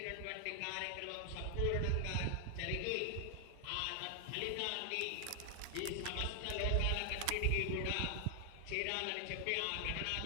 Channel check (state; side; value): different; both; correlation 0.00